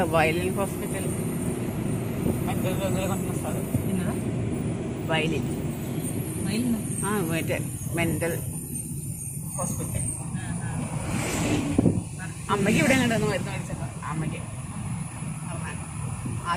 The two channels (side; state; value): both; identical; correlation 1.00